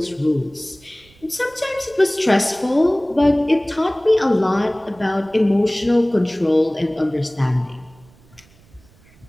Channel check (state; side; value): noise; right; rumble, 28 dB below the sound